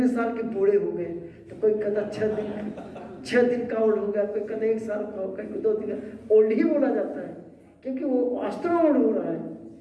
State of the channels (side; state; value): both; identical; correlation 1.00